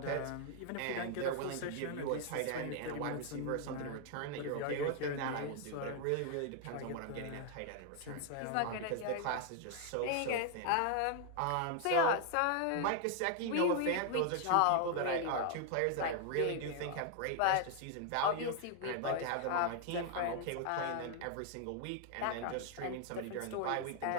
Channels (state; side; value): different; both; correlation 0.00